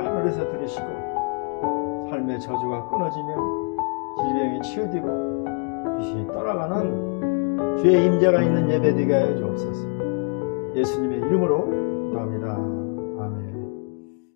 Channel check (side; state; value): right; quieter; 34.0 dB